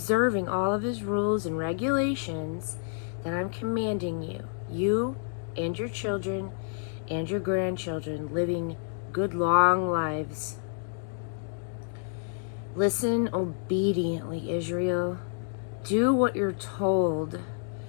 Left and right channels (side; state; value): right; silent; digital silence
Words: all of his rules and regulations that I'm commanding you, you and your children and your grandchildren, living good long lives. Listen obediently, Israel. Do what you're told